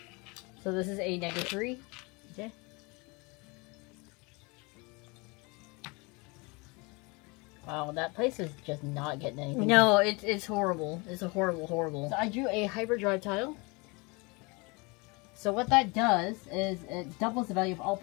So this is a -3. Okay. Wow, that place is just not getting anything. No, it's horrible. It's a horrible. So I drew a hyperdrive tile. So what that does is it doubles the value of all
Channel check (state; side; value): quieter; right; 28.0 dB